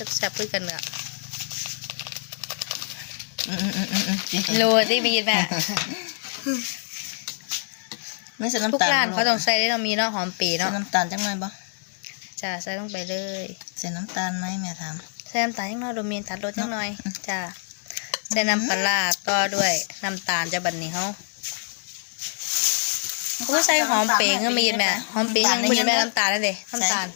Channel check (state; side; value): silent; right; digital silence